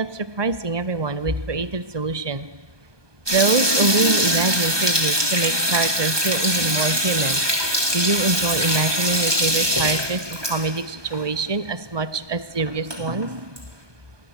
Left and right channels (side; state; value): left; late; 1.2 ms